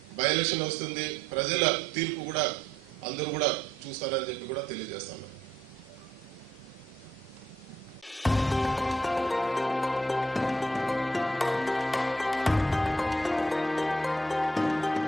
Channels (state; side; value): normal; both; correlation 0.71